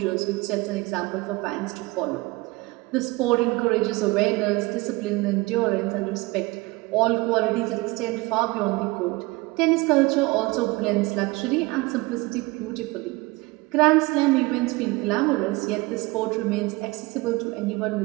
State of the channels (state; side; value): quieter; left; 22.9 dB